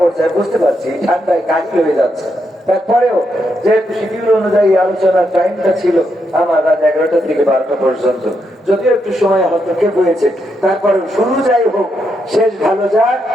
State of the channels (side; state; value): both; normal; correlation 0.81